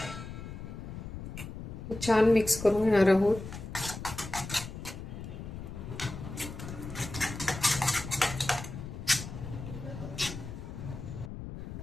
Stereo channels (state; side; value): noise; left; rumble, 9 dB below the sound